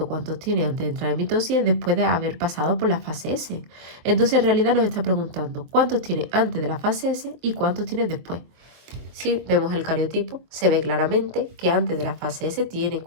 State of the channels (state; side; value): late; left; 24 ms